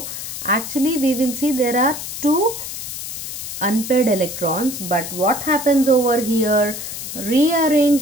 actually we will see there are two unpaired electrons, but what happens over here?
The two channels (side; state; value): left; noise; hiss, 7 dB below the sound